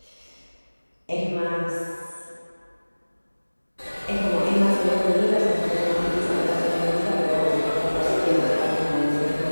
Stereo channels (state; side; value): inverted; both; correlation -1.00